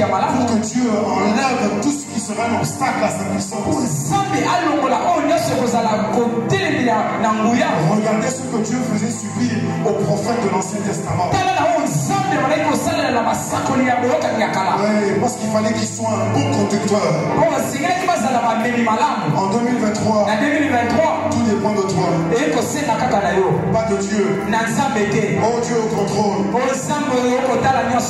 que Dieu enlève tout ce qui serait un obstacle à sa puissance. Regardez ce que Dieu faisait subir aux prophètes de l'Ancien Testament. Oui, parce qu'il fallait qu'ils soient un bon conducteur. En 2023, tout dépend de toi. Pas de Dieu. Oh, Dieu au contrôle.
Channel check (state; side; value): identical; both; correlation 1.00